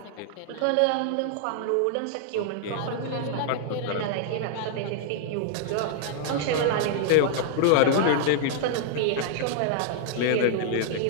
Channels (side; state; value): both; different; correlation -0.01